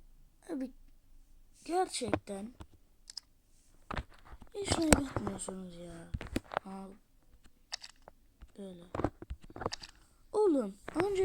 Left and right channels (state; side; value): identical; both; correlation 1.00